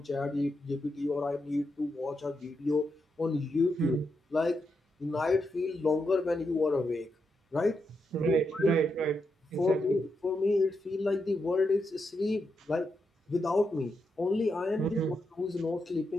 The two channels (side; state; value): both; normal; correlation 0.84